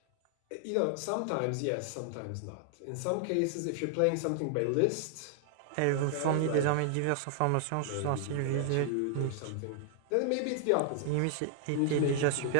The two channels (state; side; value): different; both; correlation 0.00